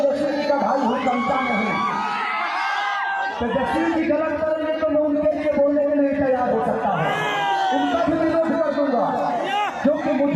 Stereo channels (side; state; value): both; identical; correlation 1.00